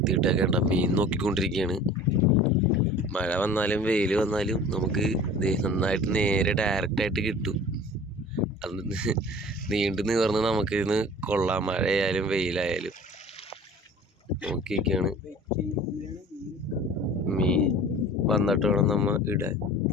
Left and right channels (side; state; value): both; normal; correlation 0.43